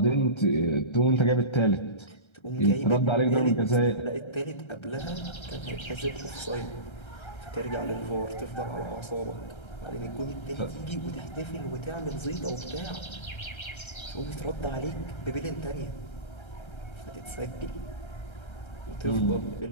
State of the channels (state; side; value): late; right; 1.3 ms